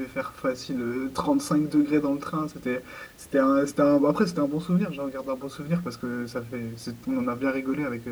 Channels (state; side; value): identical; both; correlation 1.00